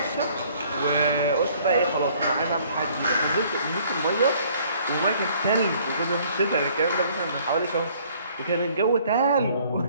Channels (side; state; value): both; inverted; correlation -0.59